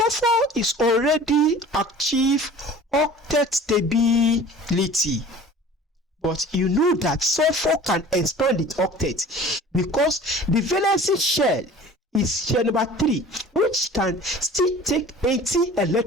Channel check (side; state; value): both; normal; correlation 0.44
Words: is already achieved octet stability. But you know that sulfur can expand its octet because the valency shell is shell number 3, which can still take 80